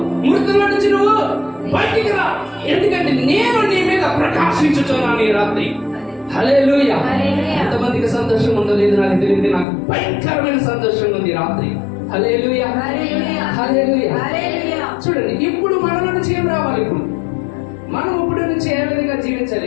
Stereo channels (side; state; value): right; drops out; at 9.7 s